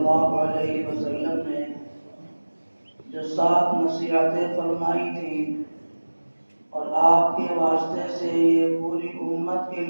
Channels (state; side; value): inverted; both; correlation -1.00